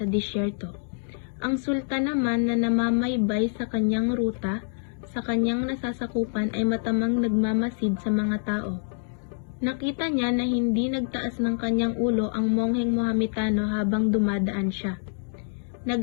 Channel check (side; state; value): right; silent; 61 dB below the other